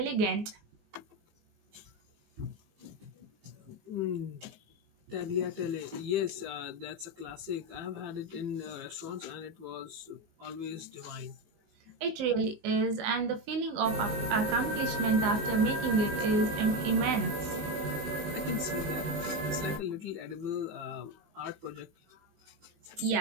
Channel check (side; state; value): left; late; 19 ms